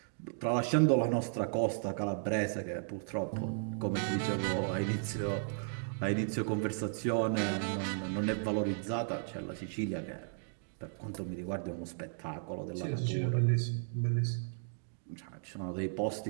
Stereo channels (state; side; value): silent; left; digital silence